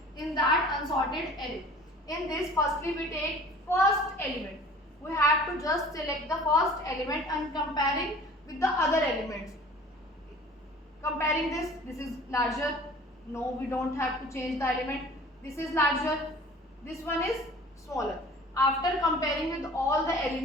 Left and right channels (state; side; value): normal; both; correlation 0.46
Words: in that unsorted array. In this, firstly we take first element. We have to just select the first element and comparing with the other elements. Comparing this is larger. No, we don't have to change the element. This is larger. This one is smaller. After comparing with all the